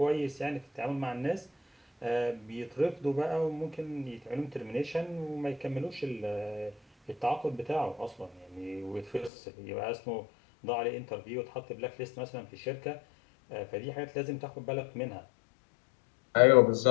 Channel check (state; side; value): drops out; right; at 9.3 s